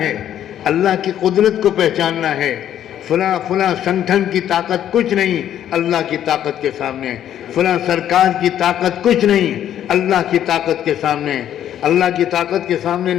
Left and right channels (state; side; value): quieter; right; 10.8 dB